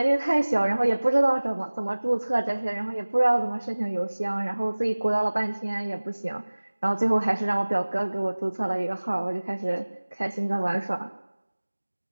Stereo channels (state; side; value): inverted; both; correlation -1.00